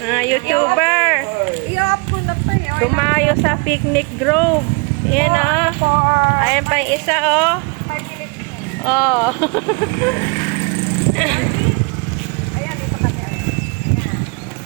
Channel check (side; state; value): left; quieter; 31.9 dB